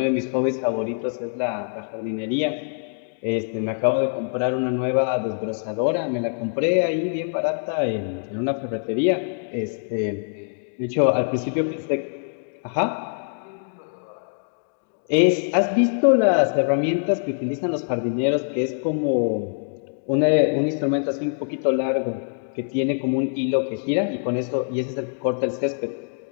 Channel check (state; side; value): silent; right; digital silence